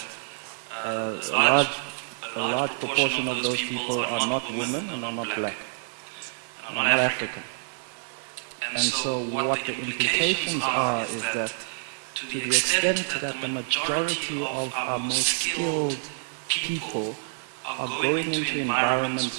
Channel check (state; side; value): silent; left; digital silence